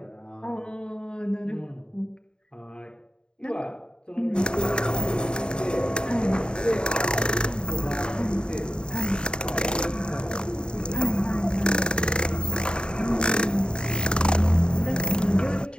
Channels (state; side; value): late; right; 0.049 ms